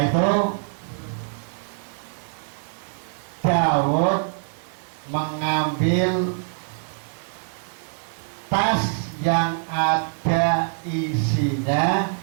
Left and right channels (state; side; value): silent; left; 62 dB below the other